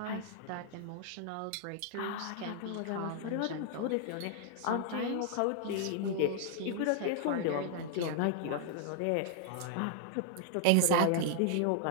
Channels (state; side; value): different; both; correlation 0.00